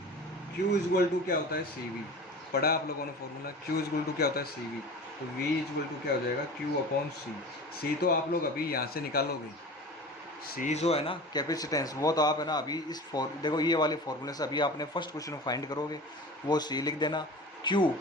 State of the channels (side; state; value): both; normal; correlation 0.36